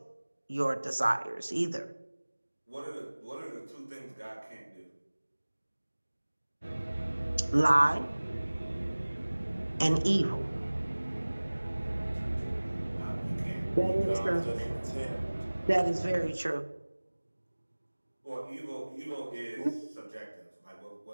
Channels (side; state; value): both; inverted; correlation -1.00